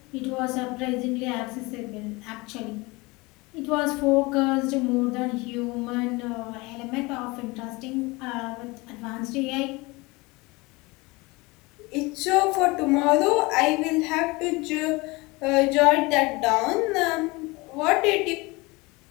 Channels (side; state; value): right; quieter; 24.2 dB